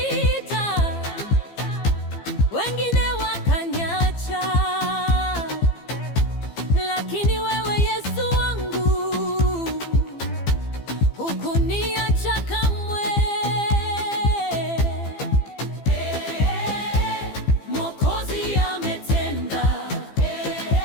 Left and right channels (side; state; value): right; late; 15 ms